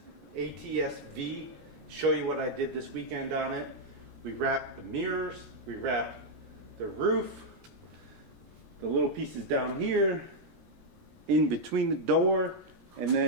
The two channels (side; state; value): left; late; 16 ms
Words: ATS-V, show you what I did this weekend on it. We wrapped the mirrors, we wrapped the roof, the little pieces down here, in between the door, and